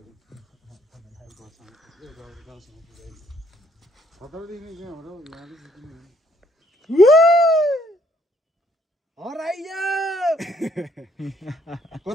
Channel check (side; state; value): both; normal; correlation 0.67